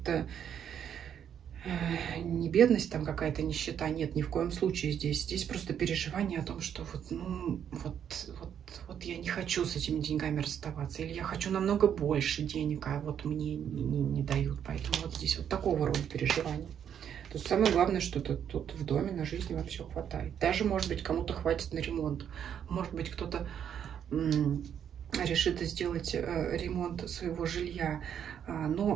не бедность, там какая-то нищета, нет, ни в коем случае здесь. Здесь просто переживание о том, что вот я не хочу с этими деньгами расставаться, или я хочу намного больше денег, а вот мне не дают. Поэтому вот здесь вот такого рода переживания. То есть самое главное, что тут в доме на жизнь вам все хватает. Даже, может быть, кому-то хватит на ремонт. Может быть, кто-то решит сделать ремонт своего жилья.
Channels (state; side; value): quieter; left; 8.8 dB